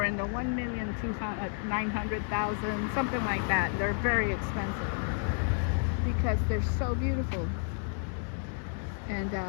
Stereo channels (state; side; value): silent; right; digital silence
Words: in the 1,900,000, something like that. They're very expensive because they're so beautiful. And